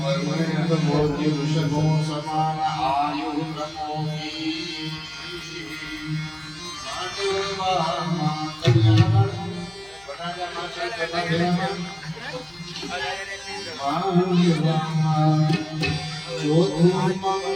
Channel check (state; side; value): noise; left; hum, 28 dB below the sound